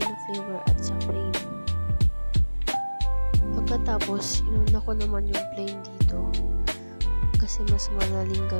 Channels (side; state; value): both; inverted; correlation -1.00